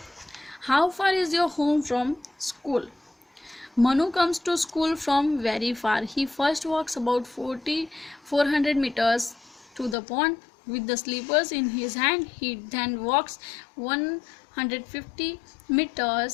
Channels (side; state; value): right; drops out; at 10.0 s